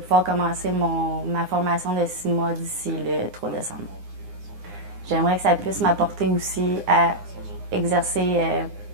commencer ma formation de 6 mois d'ici le 3 décembre. J'aimerais que ça puisse m'apporter aussi à exercer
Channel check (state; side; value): late; left; 9.8 ms